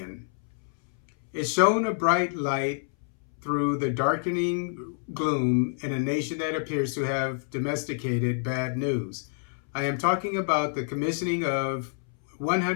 It shone a bright light through the darkening gloom in a nation that appears to have domesticated bad news. I am talking about the commissioning of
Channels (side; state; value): right; silent; 60 dB below the other